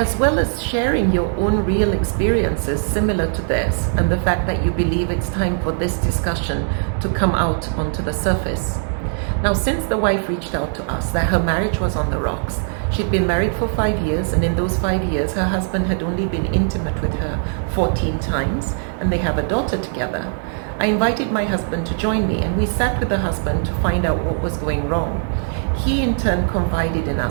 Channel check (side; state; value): left; silent; 62 dB below the other